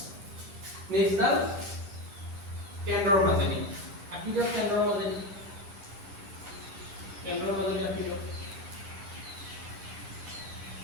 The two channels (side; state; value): left; late; 9.8 ms